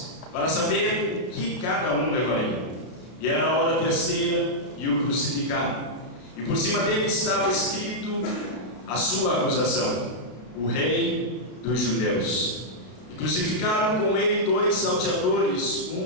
para saber o que cada um levaria. E era a hora terceira, e o crucificaram. E por cima dele estava escrito a sua acusação: o Rei dos Judeus. E crucificaram com ele 2 salteadores,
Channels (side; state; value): right; late; 33 ms